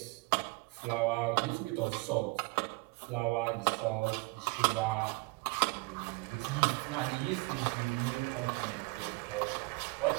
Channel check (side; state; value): left; quieter; 26.4 dB